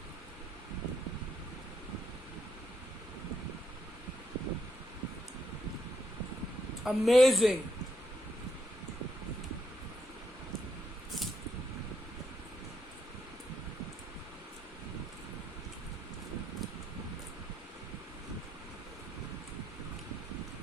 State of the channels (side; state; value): both; normal; correlation 0.77